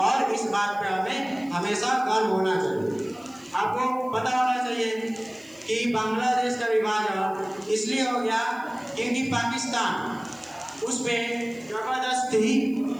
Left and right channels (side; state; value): right; noise; hiss, 29 dB below the sound